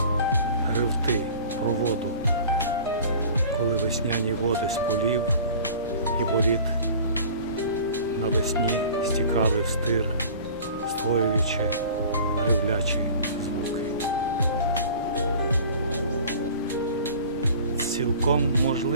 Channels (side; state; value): both; inverted; correlation -0.43